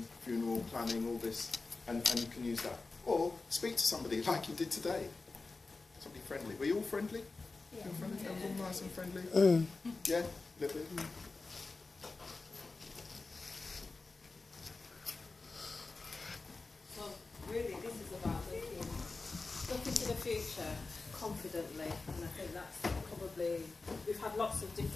funeral planning, all this, and you can use that. Or speak to somebody like you did today. Somebody friendly. Were you all friendly? Yeah. Friendly? Yeah. All nice and friendly? Yeah? A little bit? So really this is about looking to the future confidently, and I think that's probably, we've had lots of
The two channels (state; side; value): quieter; right; 3.8 dB